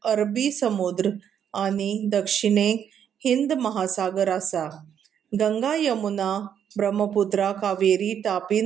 अरबी समुद्र आनी दक्षिणेक हिंद महासागर आसा. गंगा, यमुना, ब्रह्मपुत्रा, कावेरी, तापी,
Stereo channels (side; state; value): left; quieter; 8.8 dB